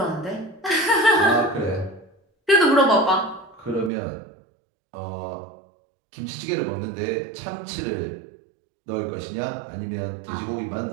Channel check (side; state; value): left; drops out; at 3.9 s